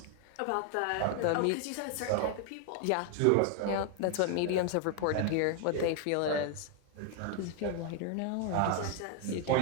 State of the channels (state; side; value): different; both; correlation 0.00